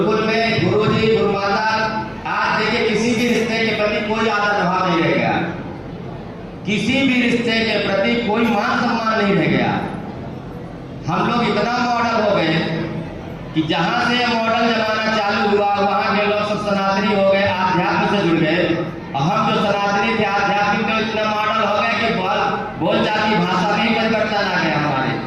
में गुरुजी गुरुमाता, आज देखिए किसी भी रिश्ते के प्रति कोई आदर भाव नहीं रह गया, किसी भी रिश्ते के प्रति कोई मान सम्मान नहीं रह गया। हम लोग इतना मॉडल हो गए कि जहां से मॉडल जमाना चालू हुआ वहां के लोग सब सनातनी हो गए, आध्यात्म से जुड़ गए। और हम जो सनातनी थे आध्यात्मिक में इतना मॉडल हो गए कि बोलचाल की भाषा में परिवर्तन आ गया हमारे।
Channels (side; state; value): both; identical; correlation 1.00